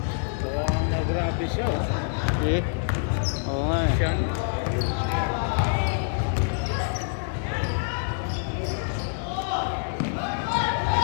Grabe siya. Eh? Oo nga eh. Siya.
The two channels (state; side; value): silent; right; 61 dB below the other